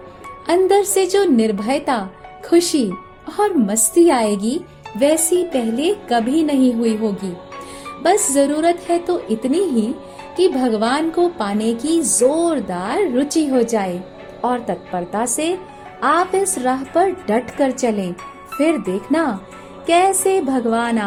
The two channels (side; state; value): both; identical; correlation 1.00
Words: अंदर से जो निर्भयता, खुशी और मस्ती आएगी, वैसी पहले कभी नहीं हुई होगी। बस जरूरत है तो इतनी ही कि भगवान को पाने की जोरदार रुचि हो जाए और तत्परता से आप इस राह पर डट कर चलें। फिर देखना कैसे भगवान